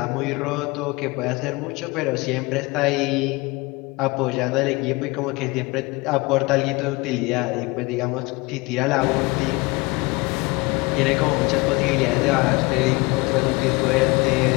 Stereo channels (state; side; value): quieter; right; 24.4 dB